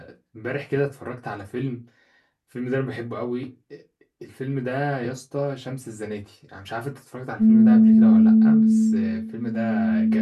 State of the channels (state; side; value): identical; both; correlation 1.00